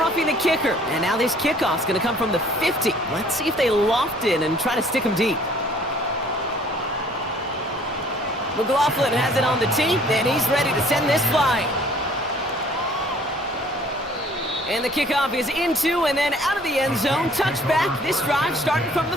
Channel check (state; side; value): normal; both; correlation 0.56